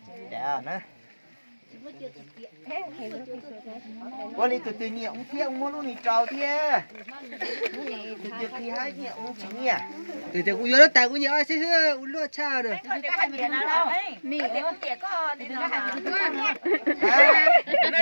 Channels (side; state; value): both; inverted; correlation -1.00